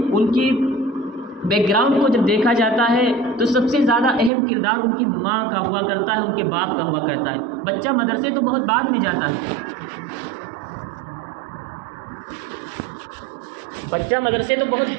ان کی بیک گراؤنڈ کو جب دیکھا جاتا ہے تو سب سے زیادہ اہم کردار ان کی ماں کا ہوا کرتا ہے، ان کے باپ کا ہوا کرتا ہے۔ بچہ مدرسے تو بہت بعد میں جاتا ہے، بچہ مدرسے تو بہت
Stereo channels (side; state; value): left; drops out; at 4.3 s